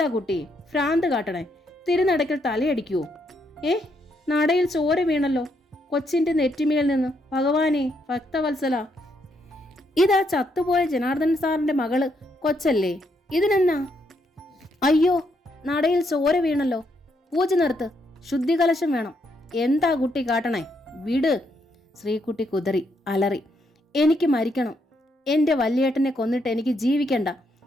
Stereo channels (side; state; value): both; normal; correlation 0.76